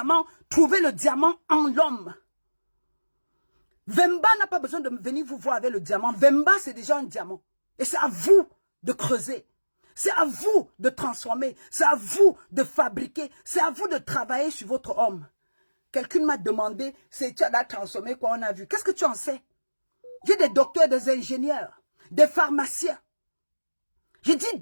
trouvez le diamant en l'homme. Vemba n'a pas besoin de venir vous voir avec le diamant. Vemba, c'est déjà un diamant. Et c'est à vous de creuser. C'est à vous de transformer. C'est à vous de fabriquer. C'est à vous de travailler sur votre homme. Quelqu'un m'a demandé, tu as transformé quoi on a vu. Qu'est-ce que tu en sais? J'ai des docteurs, des ingénieurs, des pharmaciens. J'ai dit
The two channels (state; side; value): inverted; both; correlation -1.00